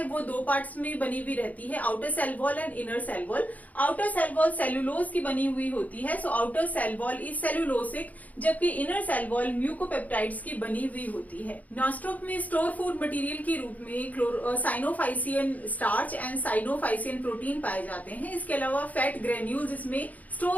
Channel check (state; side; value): late; right; 0.076 ms